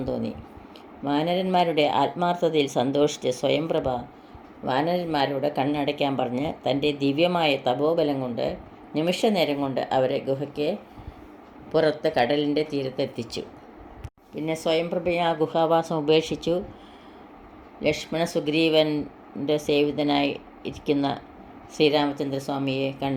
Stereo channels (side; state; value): both; identical; correlation 1.00